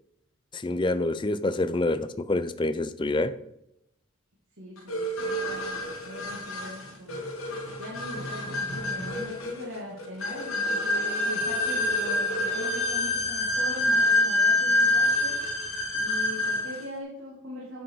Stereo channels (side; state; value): both; normal; correlation 0.42